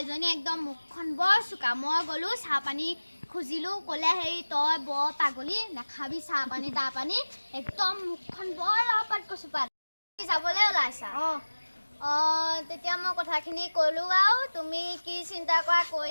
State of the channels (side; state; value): both; inverted; correlation -1.00